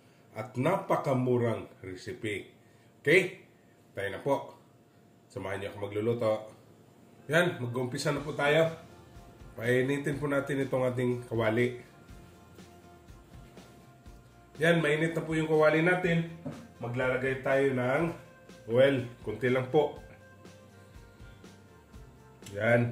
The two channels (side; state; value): both; identical; correlation 1.00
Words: at napakamurang recipe. Okay? Tayo na po. Samahan niyo ako magluluto. Yan, mag-umpisa na po tayo. Painitin po natin itong ating kawali. Yan, mainit na po yung kawali natin. Maglalagay tayo ng oil. Kunti lang po.